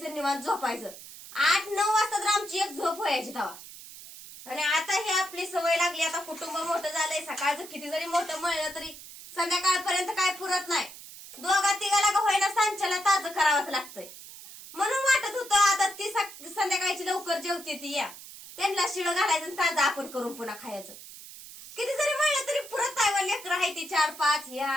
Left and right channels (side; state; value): right; noise; hiss, 15 dB below the sound